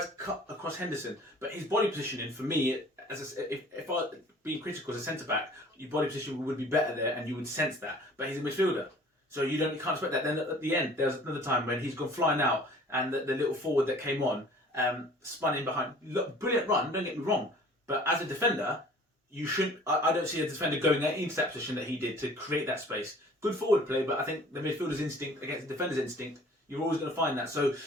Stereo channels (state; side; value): normal; both; correlation 0.49